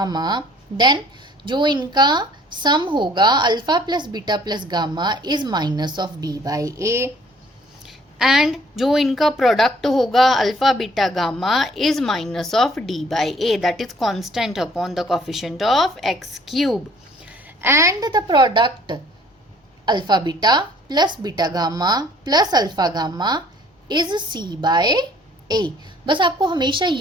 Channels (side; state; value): both; normal; correlation 0.57